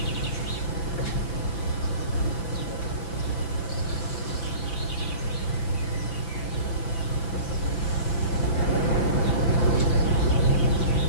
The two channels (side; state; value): right; late; 5.9 ms